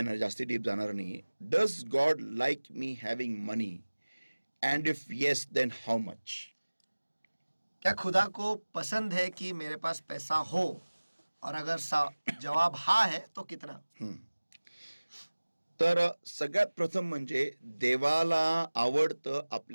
जास्ती डीप जाणार नाही. Does God like me having money, and if yes then how much? क्या खुदा को पसंद है कि मेरे पास पैसा हो, और अगर जवाब हा है तो कितना? तर सगळ्यात प्रथम म्हणजे देवाला आवडतं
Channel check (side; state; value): both; inverted; correlation -1.00